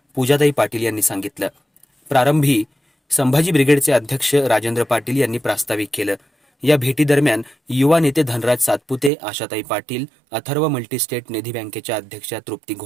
पूजाताई पाटील यांनी सांगितलं। प्रारंभी संभाजी ब्रिगेडचे अध्यक्ष राजेंद्र पाटील यांनी प्रास्ताविक केलं। या भेटीदरम्यान युवा नेते धनराज सातपुते, आशाताई पाटील, अथर्व मल्टीस्टेट निधी बँकेच्या अध्यक्षा तृप्ती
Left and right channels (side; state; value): left; drops out; at 9.1 s